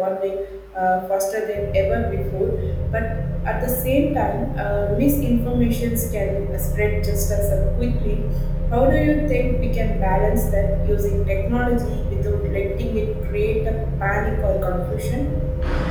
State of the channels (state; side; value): identical; both; correlation 1.00